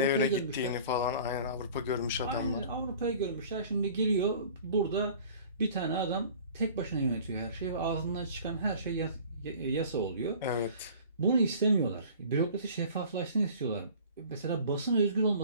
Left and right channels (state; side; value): inverted; both; correlation -0.46